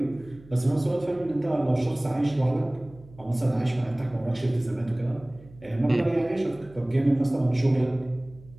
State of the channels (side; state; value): right; noise; hum, 22 dB below the sound